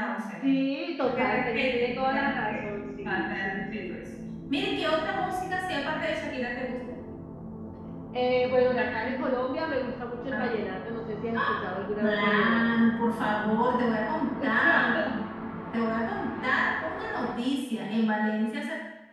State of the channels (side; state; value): both; identical; correlation 1.00